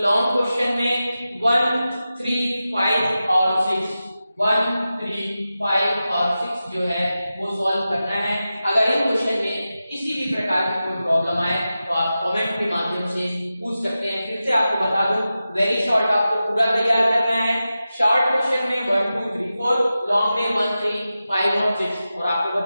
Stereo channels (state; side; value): inverted; both; correlation -0.93